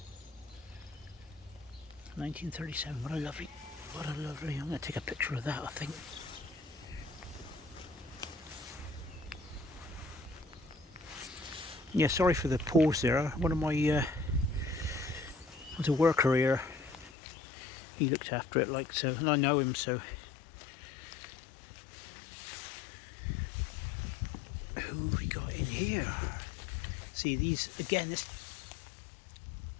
1937. What a lovely, I'm going to take a picture of that, I think. Yeah, sorry for the pause there. One of my, was a worker here. He looked after it like so, and I know him, so. Who have we got in here? See these, again, this,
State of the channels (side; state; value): right; drops out; at 17.1 s